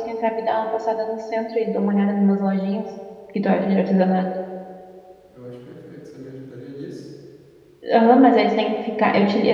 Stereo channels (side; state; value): both; identical; correlation 1.00